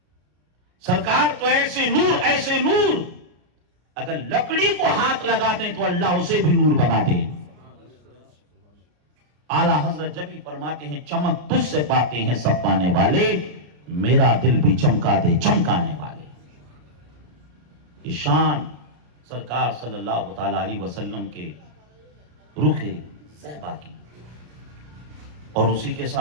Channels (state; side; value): late; left; 34 ms